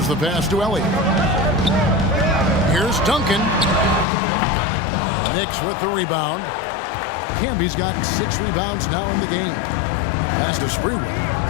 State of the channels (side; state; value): right; drops out; at 4.0 s